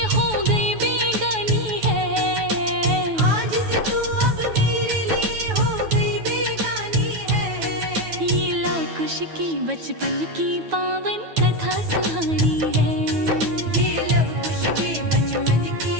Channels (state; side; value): late; left; 9.3 ms